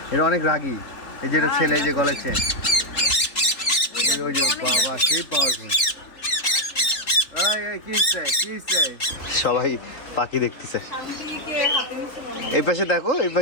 এটা অনেক রাগী। এই যেটা ছেলে যে গলেছে, ওই যে বাবা সেই পাওয়ারফুল। সবাই পাখি দেখতেছে। এই পাশে দেখো, এই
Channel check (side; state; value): right; late; 3.8 ms